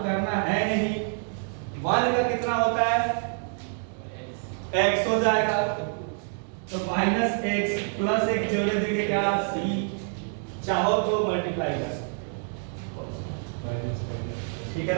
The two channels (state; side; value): silent; left; 57 dB below the other